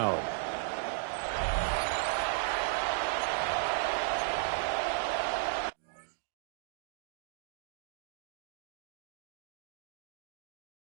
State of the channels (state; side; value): silent; left; digital silence